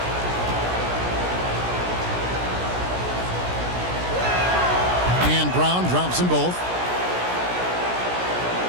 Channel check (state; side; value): late; left; 17 ms